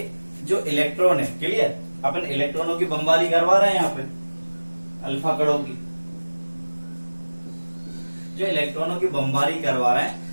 जो इलेक्ट्रॉन है, क्लियर, अपन इलेक्ट्रॉनों की बमबारी करवा रहे हैं यहाँ पे अल्फा कणों की। जो इलेक्ट्रॉनों की बमबारी करवा रहे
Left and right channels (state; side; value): inverted; both; correlation -1.00